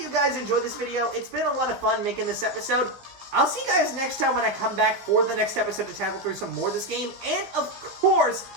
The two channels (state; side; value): late; left; 16 ms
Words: you guys enjoyed this video. It's been a lot of fun making this episode. I'll see you guys next time when I come back for the next episode to tackle through some more of this game, and, of course,